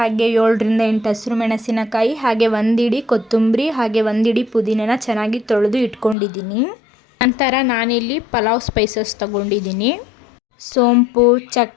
7ರಿಂದ 8 ಹಸಿರು ಮೆಣಸಿನಕಾಯಿ ಹಾಗೆ 1 ಇಡಿ ಕೊತ್ತಂಬರಿ ಹಾಗೆ 1 ಇಡಿ ಪುದೀನನ ಚೆನ್ನಾಗಿ ತೊಳೆದು ಇಟ್ಕೊಂಡಿದ್ದೀನಿ. ನಂತರ ನಾನಿಲ್ಲಿ ಪಲಾವ್ ಸ್ಪೈಸಸ್ ತಗೊಂಡಿದ್ದೀನಿ. ಸೋಂಪು,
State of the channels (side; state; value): right; drops out; at 6.2 s